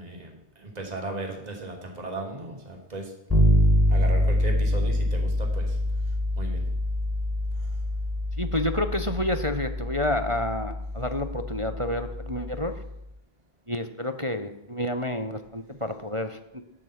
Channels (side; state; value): left; late; 1.5 ms